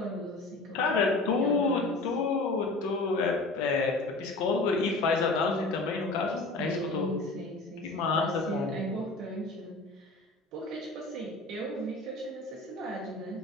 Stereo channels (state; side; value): quieter; right; 3.1 dB